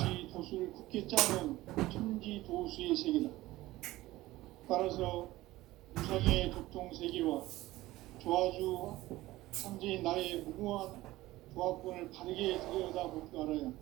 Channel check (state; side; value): quieter; left; 17.5 dB